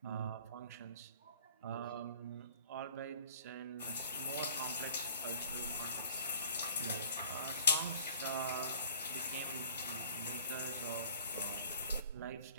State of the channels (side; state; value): both; inverted; correlation -0.49